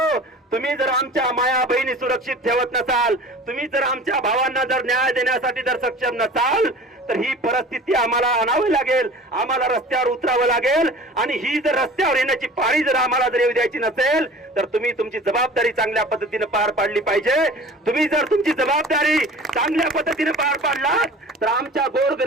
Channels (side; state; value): both; normal; correlation 0.42